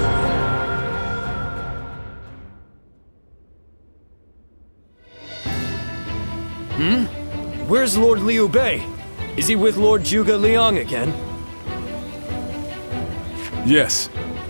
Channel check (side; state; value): both; inverted; correlation -1.00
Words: Where's Lord Liu Bei? Is he with Lord Zhuge Liang again? Yes.